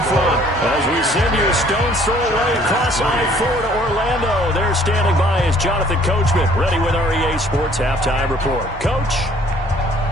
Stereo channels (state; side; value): normal; both; correlation 0.58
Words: front. As we send you a stone's throw away across I-4 to Orlando. There standing by is Jonathan Coachman, ready with our EA Sports Halftime Report. Coach?